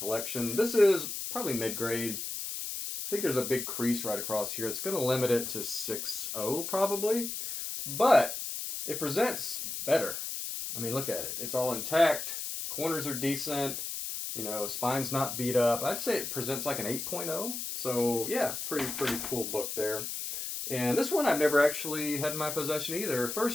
This is probably mid-grade. I think there's a big crease right across here. It's going to limit it to 6.0 probably, but it presents better. I mean, look at it. It's all intact. Corners are decent. You know, spine's not beat up. I'd say it presents like an 8.0. So yeah, pretty cool book there. And this one I've never actually had in my possession either.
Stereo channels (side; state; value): left; noise; hiss, 5 dB below the sound